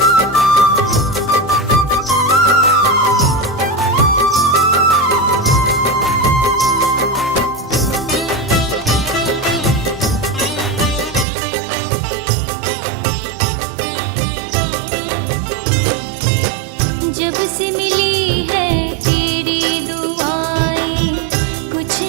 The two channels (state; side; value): drops out; left; at 11.2 s